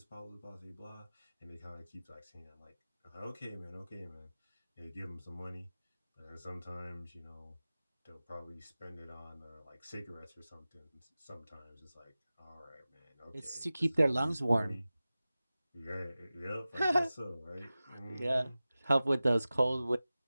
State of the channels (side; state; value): both; inverted; correlation -0.96